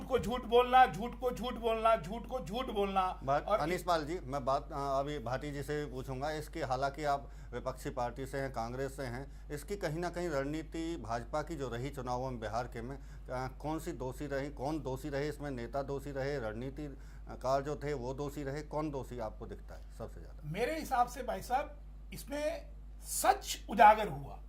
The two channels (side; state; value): both; identical; correlation 1.00